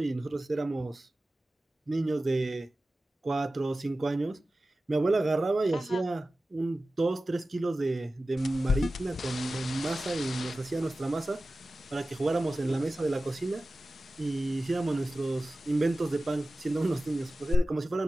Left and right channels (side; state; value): both; normal; correlation 0.95